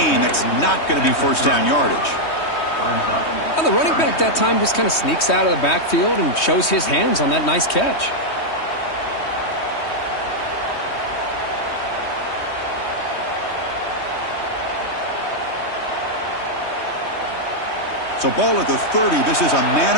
That's not going to be first down yardage. Well, the running back that time just kind of sneaks out of the backfield and shows his hands on that nice catch. So ball at the 30. This is a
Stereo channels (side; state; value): right; late; 3.2 ms